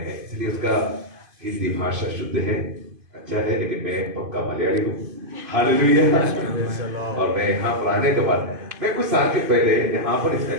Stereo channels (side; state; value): left; late; 2.5 ms